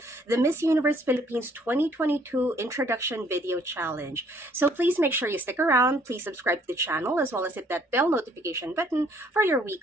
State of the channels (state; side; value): normal; both; correlation 0.62